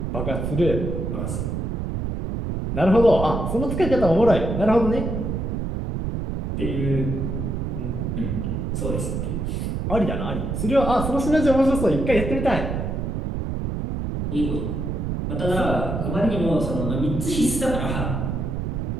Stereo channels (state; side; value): noise; right; rumble, 2 dB below the sound